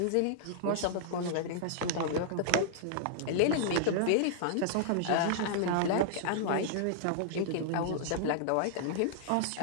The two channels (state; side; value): different; both; correlation -0.01